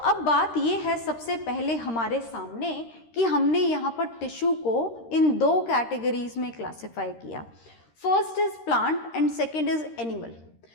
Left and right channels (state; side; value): late; right; 13 ms